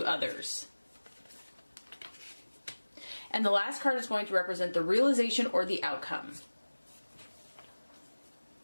others. And the last card is going to represent the realization or the outcome.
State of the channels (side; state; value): both; inverted; correlation -1.00